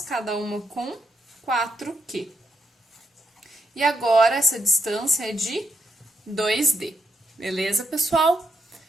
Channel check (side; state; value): both; normal; correlation 0.80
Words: cada uma com 4Q. E agora, essa distância é de 2D. Beleza, pessoal?